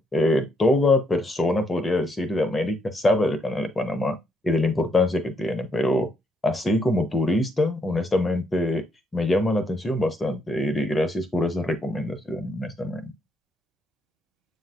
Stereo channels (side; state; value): both; normal; correlation 0.74